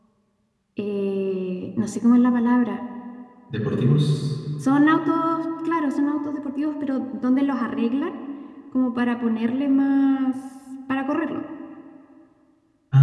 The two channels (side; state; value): both; identical; correlation 1.00